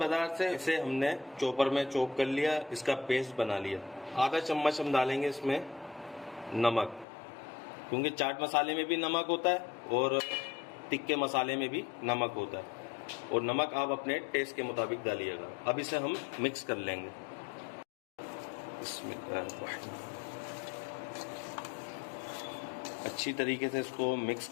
से, इसे हमने चॉपर में चॉप कर लिया, इसका पेस्ट बना लिया। आधा चम्मच हम डालेंगे इसमें नमक, क्योंकि चाट मसाले में भी नमक होता है और तिक्के मसाले में भी नमक होता है, और नमक आप अपने टेस्ट के मुताबिक डालिएगा। अब इसे हम मिक्स कर लेंगे। अच्छी तरीके से इसको मिक्स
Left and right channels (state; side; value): drops out; right; at 7.1 s